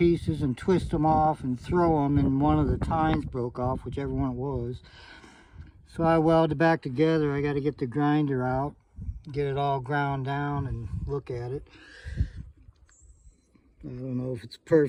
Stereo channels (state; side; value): identical; both; correlation 1.00